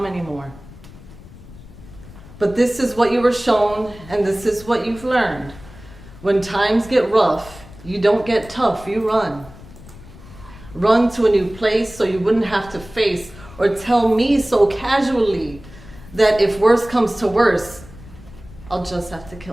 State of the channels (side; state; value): left; noise; rumble, 18 dB below the sound